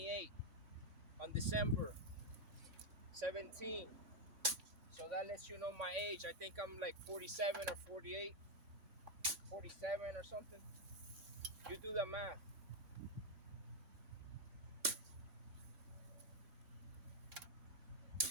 on December 17. So that lets you know my age. I think I'm like 47 or 48, 47 or something. You do the math.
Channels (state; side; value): late; left; 3.5 ms